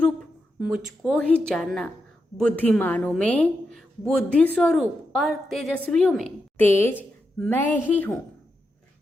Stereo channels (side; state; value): both; normal; correlation 0.86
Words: मुझको ही जानना, बुद्धिमानों में बुद्धि स्वरूप और तेजस्वियों में तेज मैं ही हूँ।